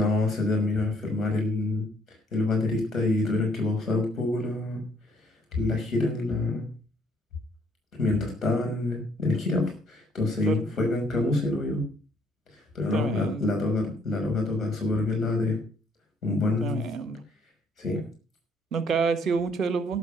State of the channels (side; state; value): both; normal; correlation 0.66